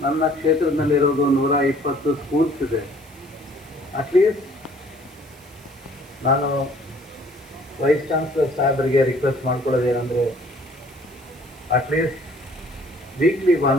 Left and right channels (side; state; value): right; noise; hiss, 26 dB below the sound